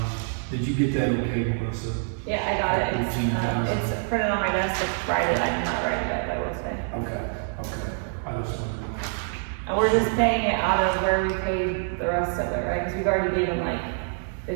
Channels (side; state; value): left; silent; 58 dB below the other